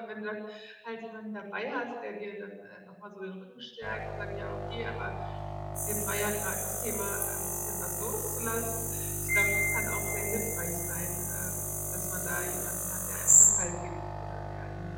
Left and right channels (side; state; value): both; identical; correlation 1.00